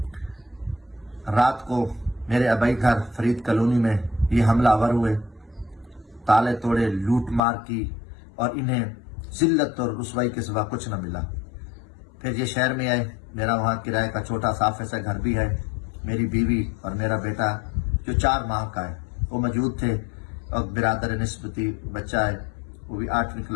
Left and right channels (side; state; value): right; drops out; at 7.4 s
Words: रात को मेरे अबई घर फरीद कॉलोनी में ये हमलावर हुए, ताले तोड़े, लूट मार की और इन्हें जिल्लत और रुसवाई के सिवा कुछ न मिला। फिर ये शहर में आए। मेरा वहाँ किराए का छोटा साफ ऐसा घर भी है। मेरी बीवी और मेरा बेटा जो 4 माह का है वो मौजूद थे, और बिरादर निस्बती बच्चा है, वो भी 8वीं